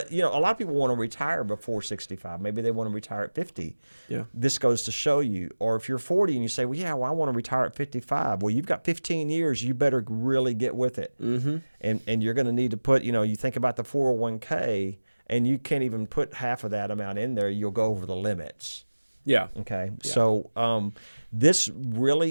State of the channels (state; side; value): inverted; both; correlation -1.00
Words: a lot of people want to retire before 65. Maybe they want to retire at 50. Yeah. This goes to show you. Or if you're 40 and you say, I want to retire at 55. Well, you've got 15 years. You better really get with it. Mm-hmm. And you're going to need to put, you think about the 401k, and you can't even put half of that amount in there. You'll go over the limits. Yeah. Okay. Yeah. So this